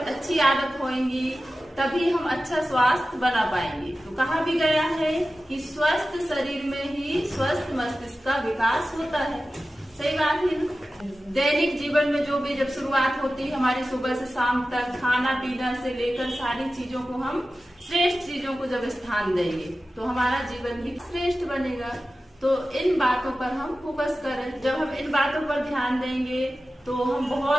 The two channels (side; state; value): both; normal; correlation 0.94